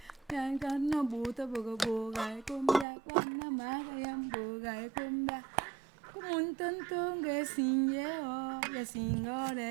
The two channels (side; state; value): left; drops out; at 2.9 s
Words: Kwana buta buga buga e kumbia, kwana maga yambuga e kumbia. Kumuntuntunge sinyeo, ya